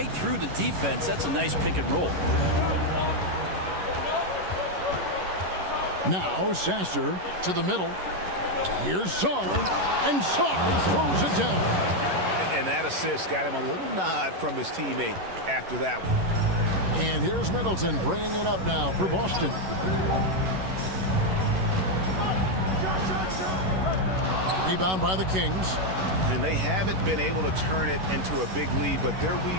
through the defense. That's a nice pick and roll. Now Sasser to the middle. Here's Sarr, and Sarr throws it down. And that assist got him a little nod from his teammate after that one. And here's Middleton bringing it up now for Boston. Rebound by the Kings. And they haven't been able to turn it into a big lead, but their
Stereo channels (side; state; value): left; late; 11 ms